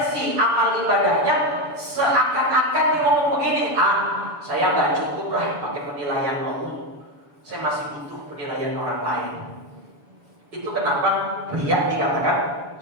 amal ibadahnya, seakan-akan dia ngomong begini, saya nggak cukup lah pakai penilaian Allah, saya masih butuh penilaian orang lain. Itu kenapa riya dikatakan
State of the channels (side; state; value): left; late; 7.0 ms